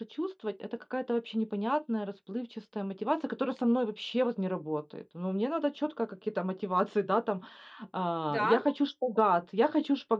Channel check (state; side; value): identical; both; correlation 1.00